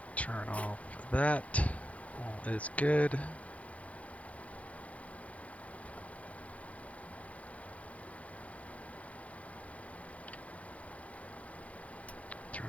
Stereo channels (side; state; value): right; late; 0.066 ms